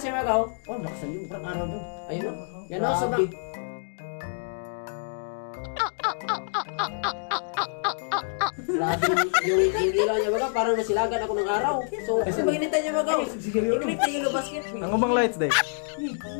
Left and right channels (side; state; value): right; silent; digital silence